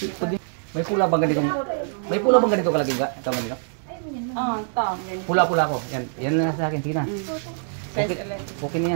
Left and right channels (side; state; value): left; silent; digital silence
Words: May pula bang ganito? May pula bang ganito kalaki ka? Tama nila? Oo, ito. Pula-pula ko. Yan, yan na sa akin. Sige na. Okay, okay na